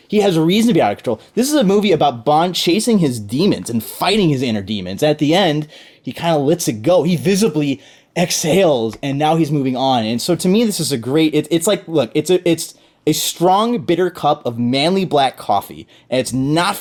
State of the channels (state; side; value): identical; both; correlation 1.00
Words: He has a reason to be out of control. This is a movie about Bond chasing his demons and fighting his inner demons. At the end, he kind of lets it go. He visibly exhales, and now he's moving on. And so to me, this is a great, it's like, look, it's a strong, bitter cup of manly black coffee. And it's not